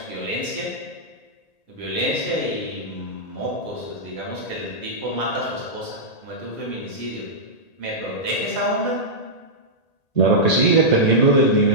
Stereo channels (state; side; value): late; right; 1.8 ms